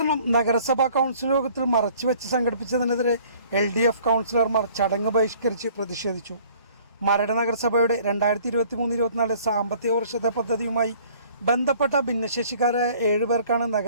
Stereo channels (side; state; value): both; inverted; correlation -0.55